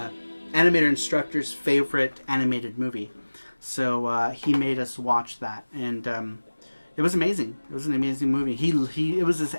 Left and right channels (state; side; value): inverted; both; correlation -1.00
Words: instructor's favorite animated movie. So he made us watch that, and it was amazing. It was an amazing movie. It was his